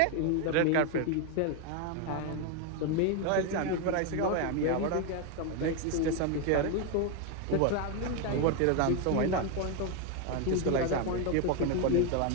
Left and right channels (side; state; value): both; different; correlation 0.01